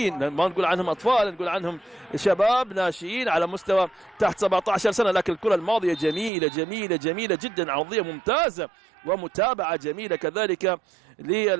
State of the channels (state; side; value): drops out; left; at 6.3 s